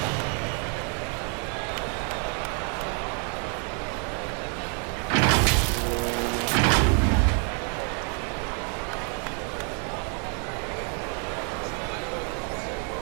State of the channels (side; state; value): left; quieter; 39.9 dB